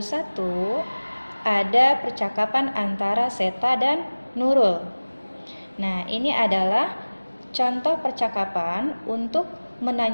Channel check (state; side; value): inverted; both; correlation -1.00